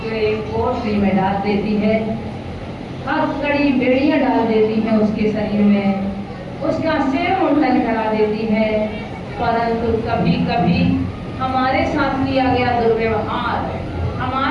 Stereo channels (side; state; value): both; identical; correlation 1.00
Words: कोठरी में डाल देती है, हथकड़ी बेड़ियां डाल देती है उसके शरीर में, उसका सिर मुंडन करा देती है। परंतु कभी कभी हमारे साथ किया गया दुर्व्यवहार,